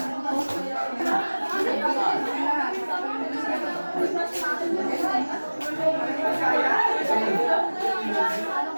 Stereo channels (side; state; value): both; inverted; correlation -1.00